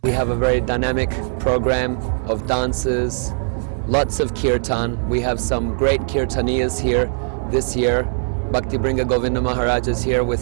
We have a very dynamic program of dances, lots of kirtan. We have some great kirtaniyas here this year. Bhakti Bringa Govinda Maharaj is here with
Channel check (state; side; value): silent; left; digital silence